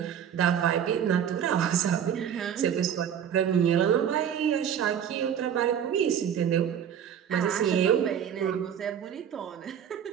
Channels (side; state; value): left; quieter; 8.9 dB